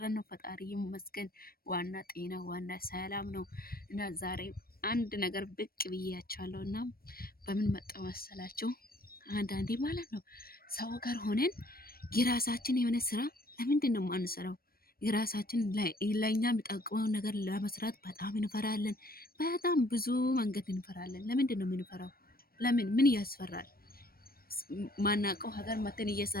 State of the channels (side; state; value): right; late; 0.44 ms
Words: ነው። ፈጣሪ ይመስገን። ዋና ጤና፣ ዋና ሰላም ነው። እና ዛሬ አንድ ነገር ብቅ ብያችኋለሁ እና በምን መጣው መሰላችሁ? አንዳንዴ ማለት ነው ሰው ጋር ሆነን የራሳችን የሆነ ስራ ለምንድን ነው የማንሰራው? የራሳችን ለእኛ የሚጠቅመውን ነገር ለመስራት በጣም እንፈራለን። በጣም ብዙ መንገድ እንፈራለን። ለምንድን ነው የምንፈራው? ምን ያስፈራል? ማናውቀው ሀገር መተን